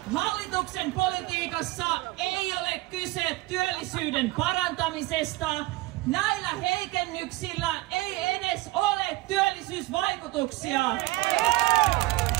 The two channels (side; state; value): left; quieter; 19.5 dB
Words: hallituksen politiikassa ei ole kyse työllisyyden parantamisesta. Näillä heikennyksillä ei edes ole työllisyysvaikutuksia.